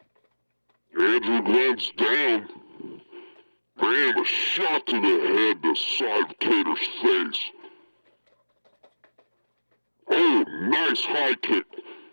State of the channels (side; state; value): both; inverted; correlation -1.00